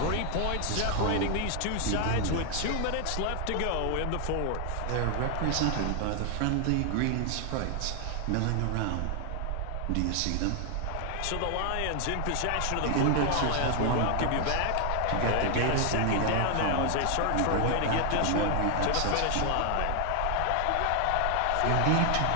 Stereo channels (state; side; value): different; both; correlation 0.00